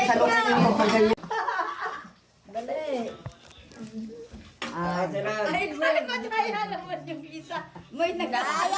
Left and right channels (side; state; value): both; identical; correlation 1.00